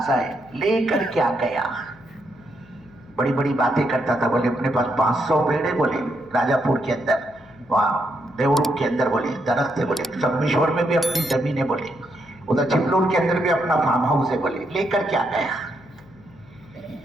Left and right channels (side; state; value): left; noise; hum, 25 dB below the sound